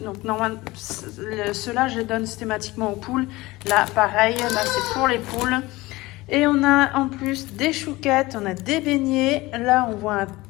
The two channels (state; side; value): quieter; right; 20.2 dB